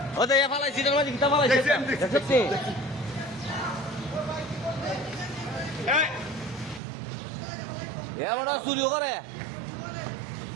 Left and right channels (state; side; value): drops out; left; at 6.8 s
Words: ও দেখে ফালাইছি তোর মাঝে কিটা ফালাইছে দেখছিস এমন চুরিও করে